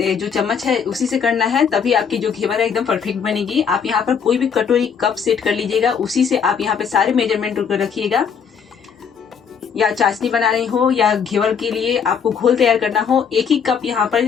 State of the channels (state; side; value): quieter; right; 6.9 dB